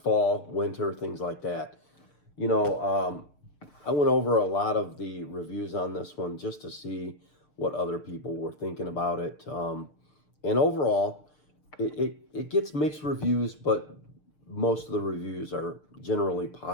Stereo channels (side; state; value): right; late; 6.7 ms